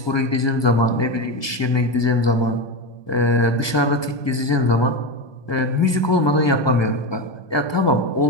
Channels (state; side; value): late; right; 1.2 ms